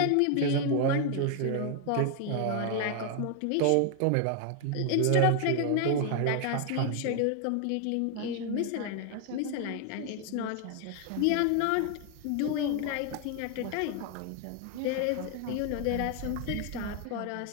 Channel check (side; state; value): both; different; correlation 0.00